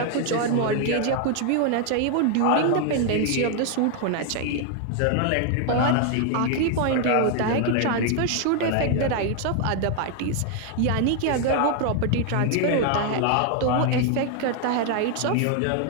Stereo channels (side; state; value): both; different; correlation 0.00